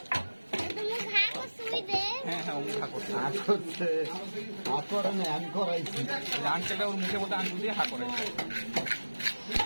হ্যাঁ হ্যাঁ ও হা করছে আঙ্কেলটা ওর মুখে বলতে আঙ্গুল দিয়ে হা করে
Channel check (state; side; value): inverted; both; correlation -1.00